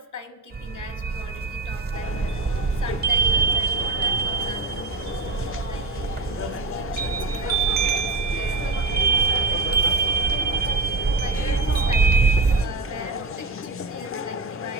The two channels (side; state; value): left; quieter; 3.4 dB